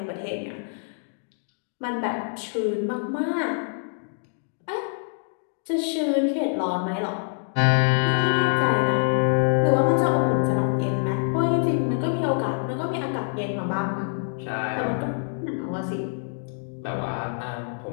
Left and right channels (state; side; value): silent; right; digital silence